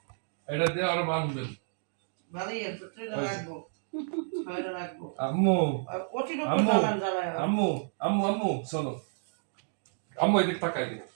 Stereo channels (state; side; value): silent; left; digital silence